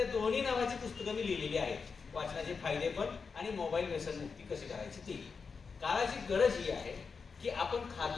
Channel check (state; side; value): quieter; right; 5.2 dB